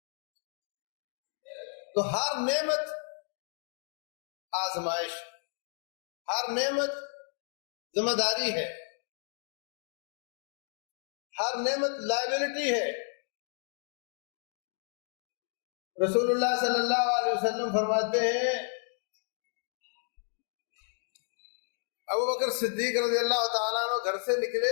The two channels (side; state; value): right; silent; 56 dB below the other